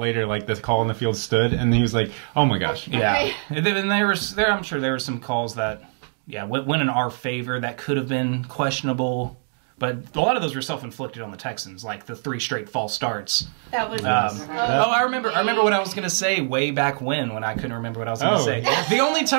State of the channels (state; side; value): silent; left; digital silence